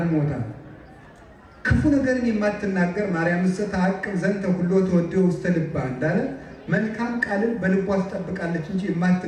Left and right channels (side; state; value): both; identical; correlation 1.00